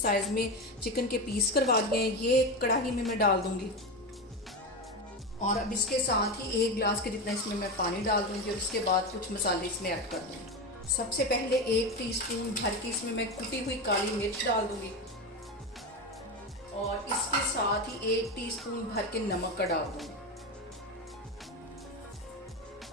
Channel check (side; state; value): both; normal; correlation 0.18